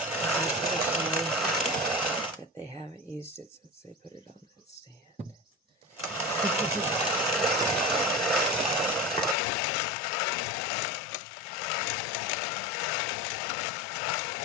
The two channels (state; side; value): drops out; right; at 9.3 s